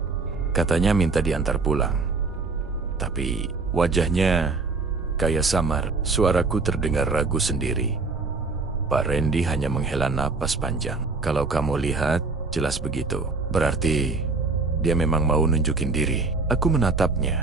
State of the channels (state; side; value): quieter; left; 4.0 dB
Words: Katanya minta diantar pulang. Tapi wajahnya kayak samar. Suaraku terdengar ragu sendiri. Pak Rendi hanya menghela napas panjang. "Kalau kamu lihat, jelas begitu. Berarti dia memang mau nunjukin diri." Aku